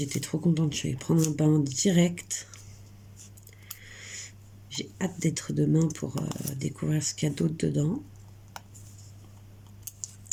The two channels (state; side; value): identical; both; correlation 1.00